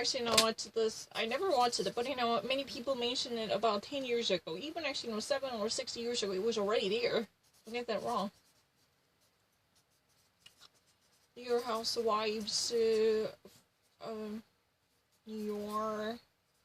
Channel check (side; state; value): both; identical; correlation 1.00